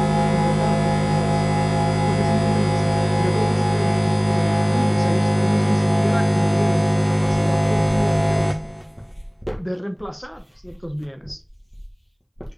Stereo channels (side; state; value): both; identical; correlation 1.00